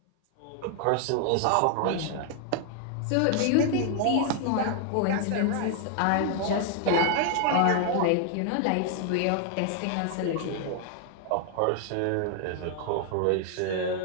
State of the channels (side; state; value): both; different; correlation 0.00